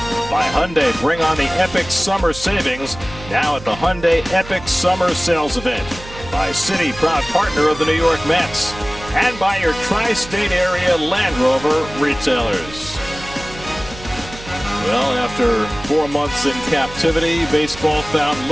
By Hyundai, bring on the epic summer savings now at the Hyundai Epic Summer Sales Event. By Citi, proud partner of the New York Mets. And by your tri-state area Land Rover retailers. Well, after 4 months in captivity, baseball found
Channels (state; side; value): noise; right; hum, 15 dB below the sound